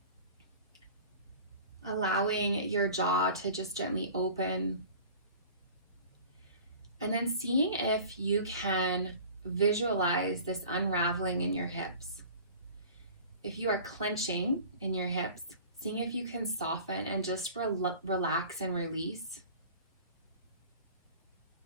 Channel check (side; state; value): both; inverted; correlation -0.42